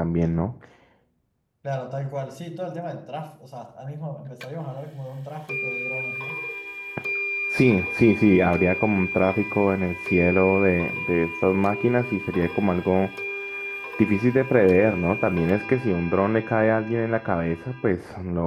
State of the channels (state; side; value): identical; both; correlation 1.00